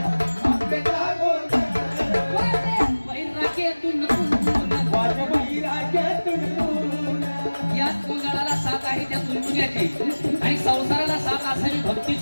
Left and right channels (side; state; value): both; inverted; correlation -1.00